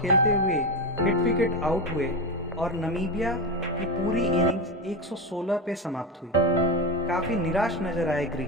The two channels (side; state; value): both; normal; correlation 0.16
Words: खेलते हुए हिट विकेट आउट हुए और नामीबिया की पूरी इनिंग्स 116 पे समाप्त हुई। काफी निराश नजर आए